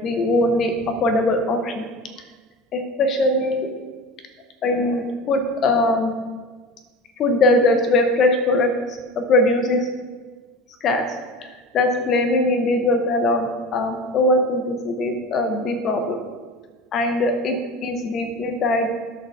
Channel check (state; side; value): normal; both; correlation 0.31